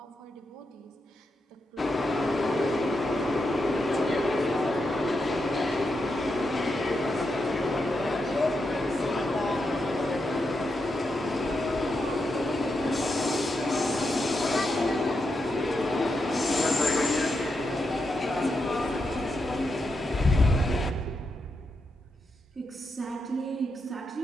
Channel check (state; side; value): normal; both; correlation 0.85